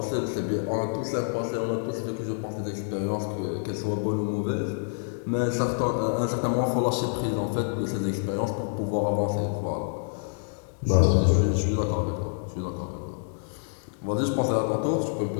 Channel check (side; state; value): right; silent; digital silence